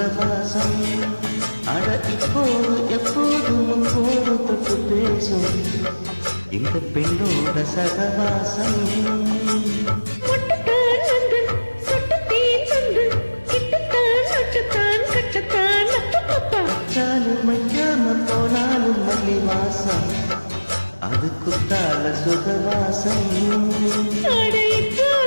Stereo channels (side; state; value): both; inverted; correlation -1.00